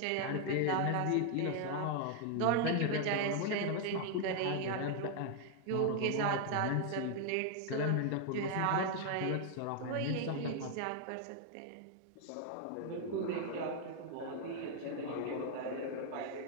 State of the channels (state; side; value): different; both; correlation 0.00